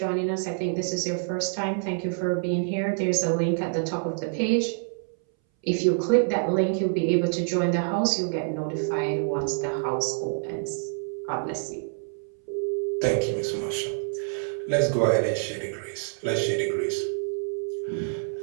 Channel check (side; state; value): left; silent; 60 dB below the other